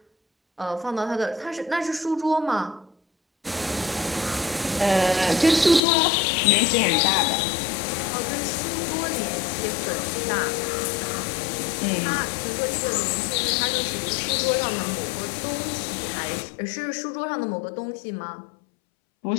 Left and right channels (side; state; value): right; drops out; at 5.8 s